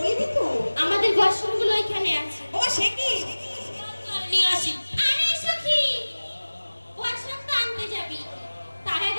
তো? আমাদের বাসনগুলো ওইখানে আছে। ও সে কি? নিয়ে আসি। আরে সখী, বাসন তো আনতে যাবি, তার আগে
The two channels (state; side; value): inverted; both; correlation -1.00